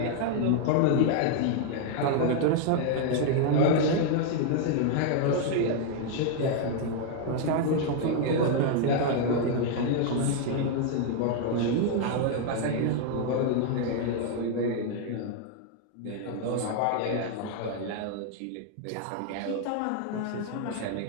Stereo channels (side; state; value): both; different; correlation 0.00